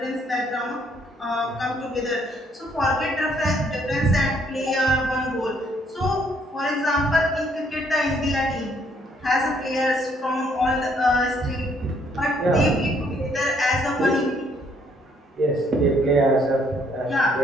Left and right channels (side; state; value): both; normal; correlation 0.67